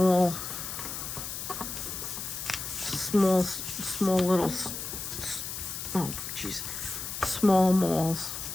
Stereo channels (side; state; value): left; noise; hiss, 6 dB below the sound